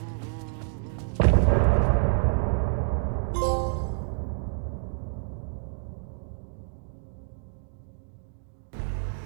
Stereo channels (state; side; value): silent; left; digital silence